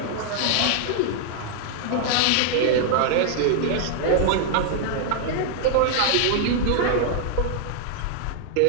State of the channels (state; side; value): different; both; correlation -0.01